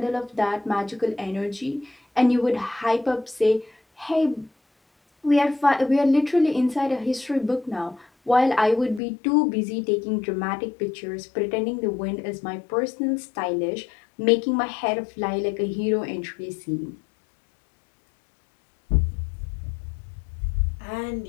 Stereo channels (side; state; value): right; drops out; at 9.0 s